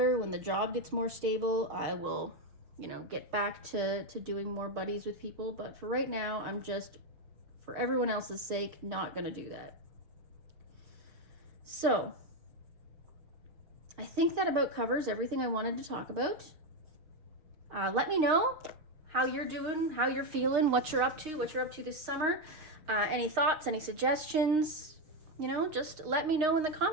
when the job gets more stable, I will, you know, get back to doing more buddies with people. But for right now, I'm just, for everyone else's sake, not gonna do that. So I think that about covers everything I wanted to talk about. Let me know how you're doing, how you're feeling, what you're up to this summer. Any thoughts, any suggestions, you know, just let me know in the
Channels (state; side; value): late; left; 6.5 ms